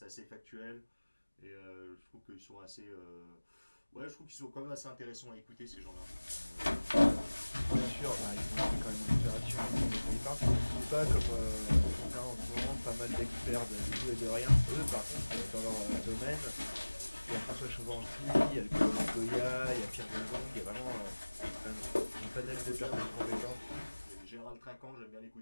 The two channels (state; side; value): inverted; both; correlation -1.00